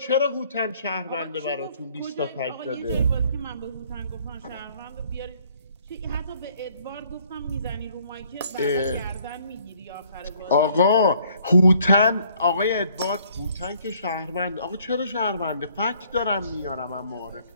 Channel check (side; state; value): both; inverted; correlation -0.62